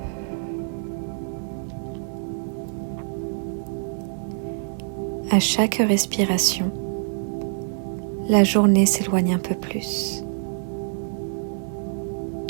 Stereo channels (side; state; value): left; silent; digital silence